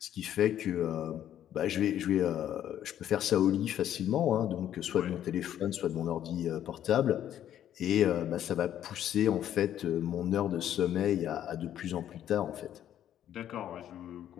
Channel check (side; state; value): right; quieter; 10.9 dB